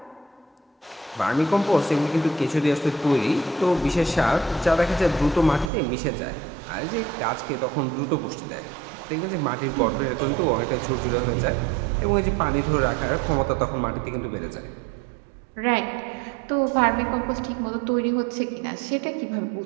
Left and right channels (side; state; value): left; drops out; at 5.7 s